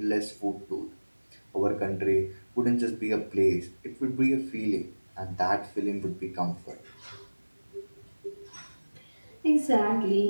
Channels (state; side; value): inverted; both; correlation -1.00